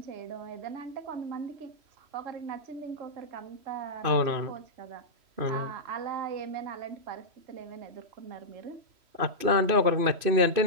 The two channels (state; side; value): late; left; 3.0 ms